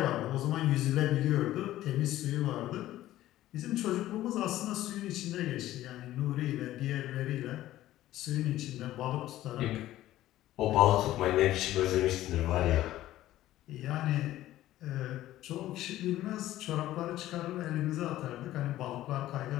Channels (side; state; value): right; quieter; 14.5 dB